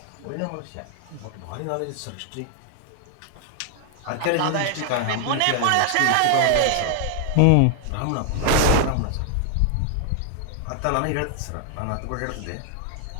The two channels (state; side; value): different; both; correlation 0.00